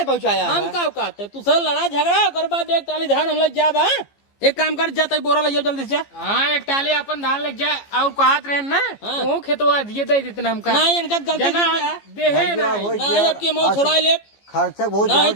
पहुंचाया हम का कहते तू सर लड़ा झगड़ा ओकर बाद एक टाली धान हम लोग जा बा एक काम कर जाता बोरा ले जाओ जल्दी से जा। हाँ एक टाली अपन धान लग जाए और कहत रहे ना वो खेतवा दिए दे देते हमका नहीं इनका गलती जना दे है ना हो नहीं गया। अब के मौत छोड़ा ले खर्चा बहुत नहीं ज्यादा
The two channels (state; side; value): late; right; 15 ms